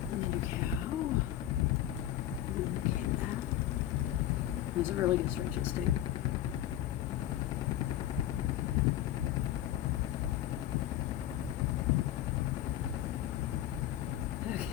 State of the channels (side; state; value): right; quieter; 12.7 dB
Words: And then do cow. And then do cat. Those are really good stretches too. Okay,